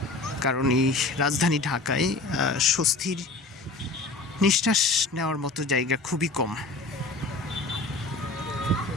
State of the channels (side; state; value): right; quieter; 3.4 dB